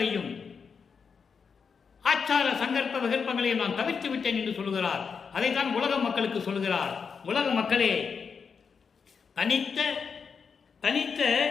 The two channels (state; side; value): quieter; right; 5.9 dB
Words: ஆச்சார சங்கற்ப விகற்பங்களையும் நான் தவிர்த்து விட்டேன் என்று சொல்கிறார். அதைத்தான் உலக மக்களுக்கு சொல்கிறார். உலக மக்களே, தனித்த